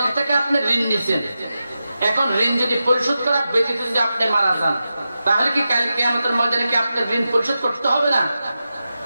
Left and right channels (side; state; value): both; inverted; correlation -0.91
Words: থেকে আপনি ঋণ নিছেন, এখন ঋণ যদি পরিশোধ করা ব্যতীত যদি আপনি মারা যান, তাহলে কি কাল কিয়ামতের ময়দানে কি আপনার ঋণ পরিশোধ করতে হবে না?